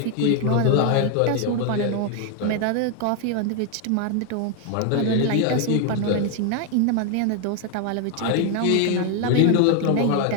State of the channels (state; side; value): different; both; correlation 0.01